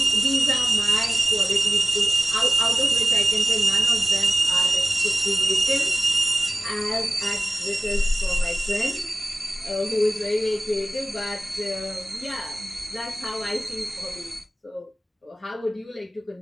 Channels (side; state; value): both; normal; correlation 0.96